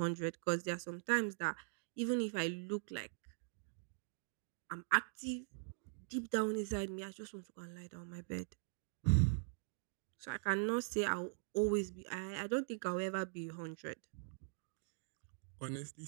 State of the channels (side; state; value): left; silent; digital silence